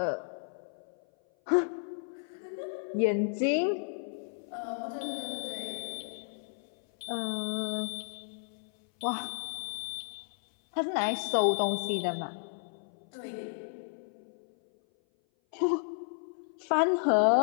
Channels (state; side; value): silent; right; 56 dB below the other